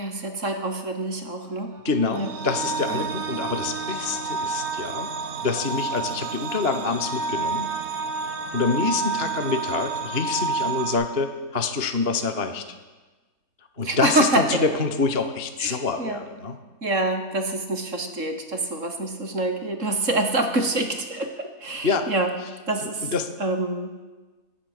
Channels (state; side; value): late; left; 3.7 ms